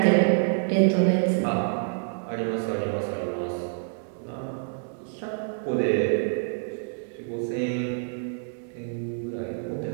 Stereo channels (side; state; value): left; silent; digital silence